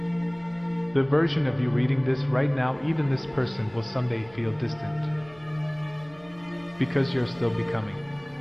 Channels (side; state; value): right; noise; hum, 26 dB below the sound